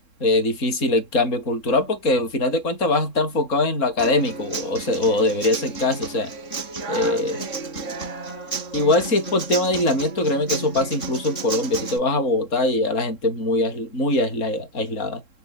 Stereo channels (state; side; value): late; right; 3.7 ms